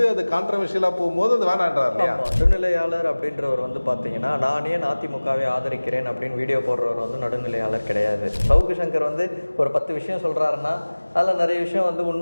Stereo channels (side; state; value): both; inverted; correlation -1.00